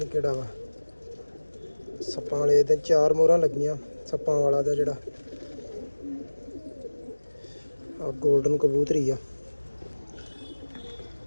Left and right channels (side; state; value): both; inverted; correlation -1.00